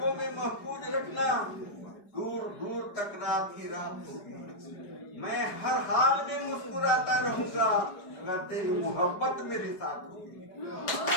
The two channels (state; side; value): late; right; 4.8 ms